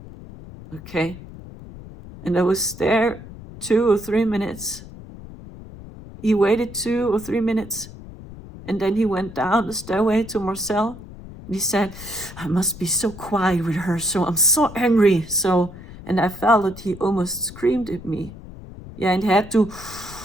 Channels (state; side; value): noise; left; rumble, 15 dB below the sound